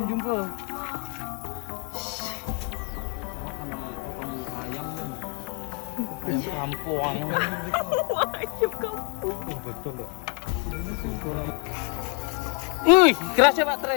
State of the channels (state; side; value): quieter; right; 36.7 dB